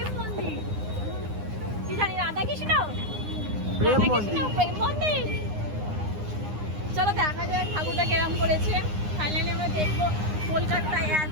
মন্দির, কি জানি রাধা কৃষ্ণ প্রেম রাধা মন্দির। কৃষ্ণ প্রেম মন্দির। চলো দেখা যায় ঠাকুরটা কেরম করেছে। ফাইনালি আমরা দেখবো। কলকাতায়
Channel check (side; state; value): left; late; 9.8 ms